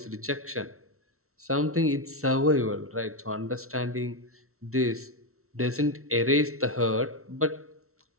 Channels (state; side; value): late; left; 0.63 ms